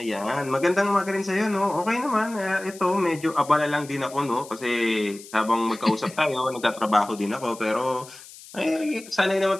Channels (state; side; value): noise; left; hiss, 18 dB below the sound